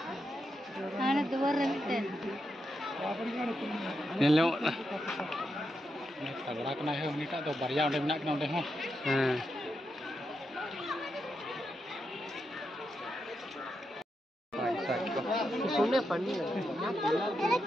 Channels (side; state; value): both; normal; correlation 0.85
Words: ana dua rente nelo tagora kena he unita do barya onde menak kena onde ho सुने पढ़नी है